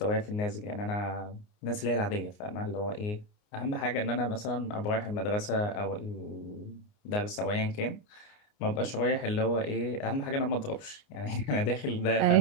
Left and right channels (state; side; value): late; right; 29 ms